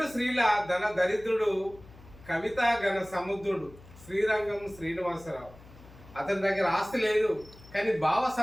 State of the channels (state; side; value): noise; left; hum, 21 dB below the sound